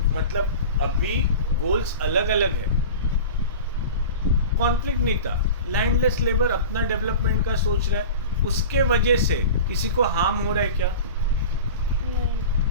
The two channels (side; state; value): both; inverted; correlation -0.34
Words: मतलब अभी गोल्स अलग अलग है, कॉन्फ्लिक्ट नहीं था। लैंडलेस लेबर अपना डेवलपमेंट का सोच रहा है, उसके वजह से किसी को हार्म हो रहा है क्या?